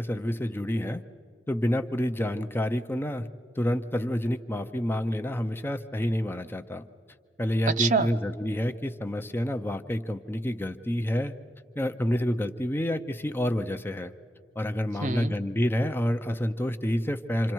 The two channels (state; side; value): normal; both; correlation 0.85